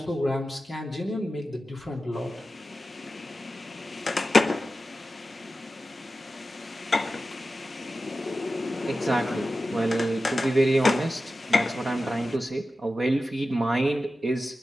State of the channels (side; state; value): both; normal; correlation 0.93